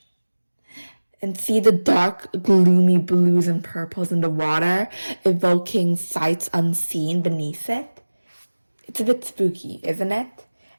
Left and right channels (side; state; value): both; inverted; correlation -1.00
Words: And see the dark, gloomy blues and purples in the water, evoking sights unseen beneath it? It's a bit spooky, isn't it?